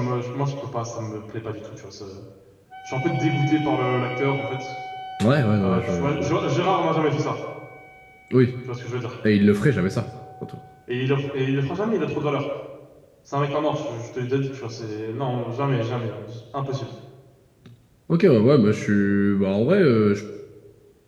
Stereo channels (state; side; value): identical; both; correlation 1.00